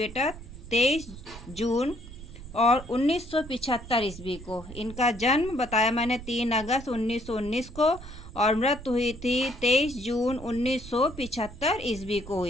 23 जून और 1975 ईस्वी को। इनका जन्म बताया मैंने 3 अगस्त 1919 को और मृत्यु हुई थी 23 जून 1975 ईस्वी को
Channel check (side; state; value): right; noise; rumble, 14 dB below the sound